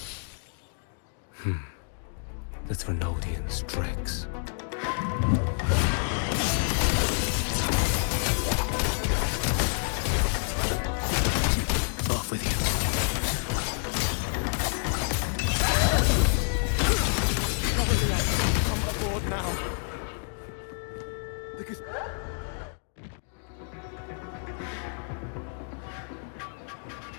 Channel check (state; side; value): silent; right; 59 dB below the other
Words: The Trinodians' tricks. Off with you. Probably I should come aboard now. Because...